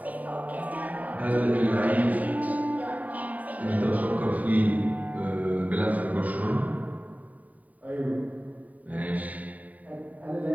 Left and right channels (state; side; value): late; left; 0.073 ms